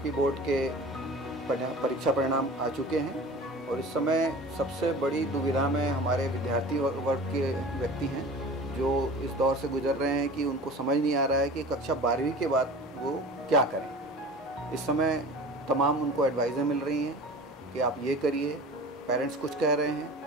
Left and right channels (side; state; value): both; normal; correlation 0.39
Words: बोर्ड के परीक्षा परिणाम आ चुके हैं और इस समय सबसे बड़ी दुविधा में हमारे विद्यार्थी वर्ग के व्यक्ति हैं जो इस दौर से गुजर रहे हैं कि उनको समझ नहीं आ रहा है कि कक्षा 12वीं के बाद वो क्या करें। इस समय तमाम उनको एडवाइज़ें मिल रही हैं कि आप ये करिए, पेरेंट्स कुछ कह रहे हैं,